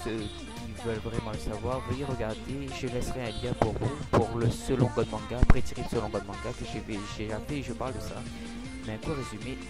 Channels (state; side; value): identical; both; correlation 1.00